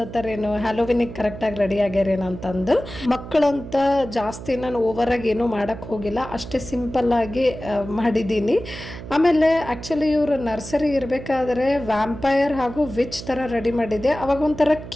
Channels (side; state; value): right; noise; hum, 12 dB below the sound